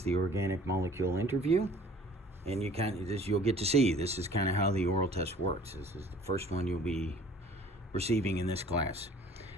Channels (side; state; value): both; normal; correlation 0.51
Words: the organic molecule interview, and you'll get to see. This is kind of how the oral test works. This is the first one you'll be receiving in this class.